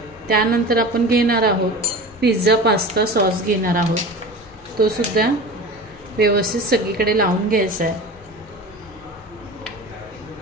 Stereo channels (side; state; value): both; normal; correlation 0.34